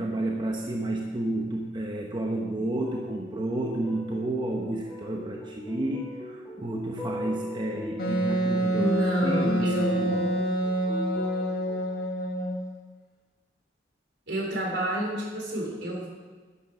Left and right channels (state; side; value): normal; both; correlation 0.61